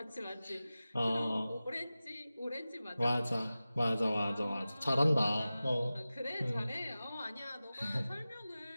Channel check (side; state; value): both; inverted; correlation -0.96